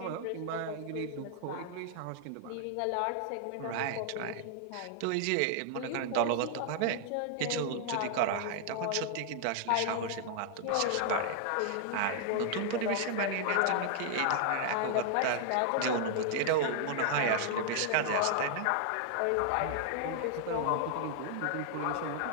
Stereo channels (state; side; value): different; both; correlation 0.00